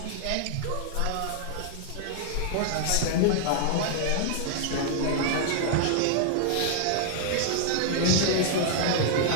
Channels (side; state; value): both; different; correlation -0.01